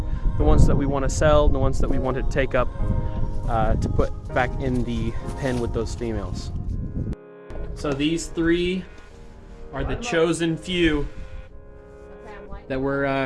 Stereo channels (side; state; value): both; identical; correlation 1.00